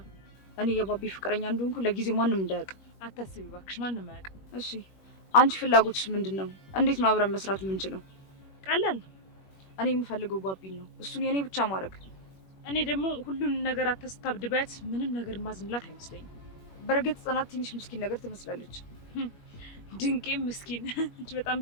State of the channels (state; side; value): late; right; 21 ms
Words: እኔ የባቢ ፍቅረኛ እንደሆንኩ ለጊዜው ማንም እንዳያውቅ። አታስቢ እባክሽ፣ ማንም አያውቅም። እሺ፣ አንቺ ፍላጎትሽ ምንድን ነው? እንዴት ነው አብረን መስራት የምንችለው? ቀላል ነው። እኔ የምፈልገው ባቢን ነው፣ እሱን የኔ ብቻ ማድረግ። እኔ ደግሞ ሁሉን ነገር አታስታብድባት። ምንም ነገር ማዝንላት አይመስለኝም። በእርግጥ ጽናት ትንሽ ምስኪን ነገር ትመስላለች። ድንቄ ምስኪን እንጂ በጣም